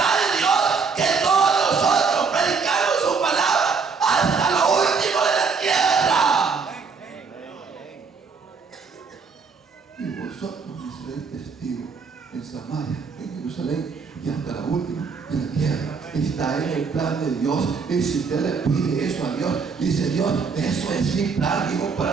de Dios que todos nosotros predicamos su palabra hasta lo último de la tierra. Jerusalén y hasta la última de la tierra. Está en el plan de Dios. Y si usted le pide eso a Dios, dice Dios, eso es mi plan, hijo,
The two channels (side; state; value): left; quieter; 5.2 dB